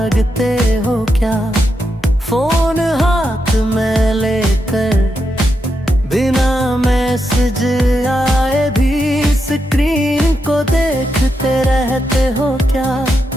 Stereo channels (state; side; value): normal; both; correlation 0.84